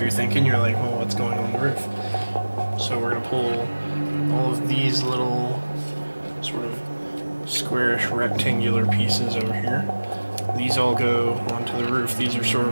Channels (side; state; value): both; inverted; correlation -1.00